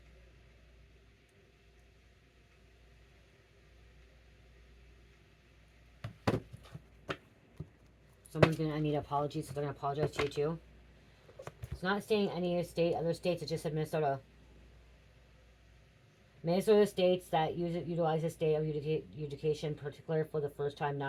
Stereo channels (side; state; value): both; identical; correlation 1.00